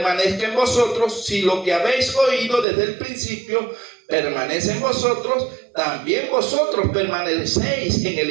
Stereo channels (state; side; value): drops out; left; at 2.7 s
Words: en vosotros. Si lo que habéis oído desde el principio permanece en vosotros, también vosotros permanecéis en el